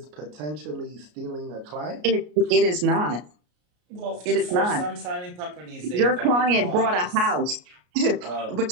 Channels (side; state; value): left; late; 33 ms